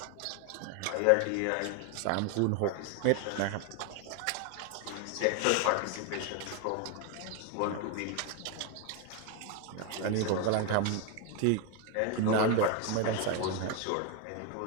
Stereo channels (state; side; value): different; both; correlation 0.01